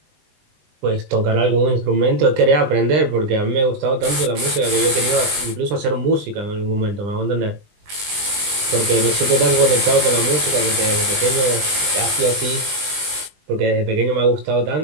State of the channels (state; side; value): late; left; 20 ms